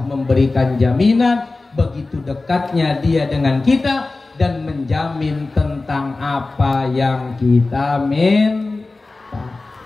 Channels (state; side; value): quieter; right; 3.4 dB